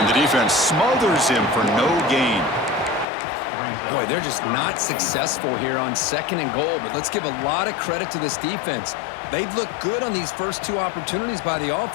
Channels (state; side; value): drops out; right; at 3.1 s